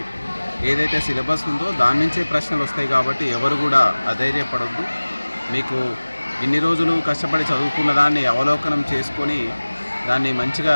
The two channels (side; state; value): both; inverted; correlation -1.00